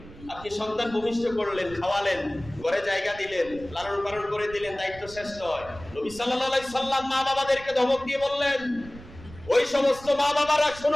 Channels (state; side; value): noise; right; rumble, 18 dB below the sound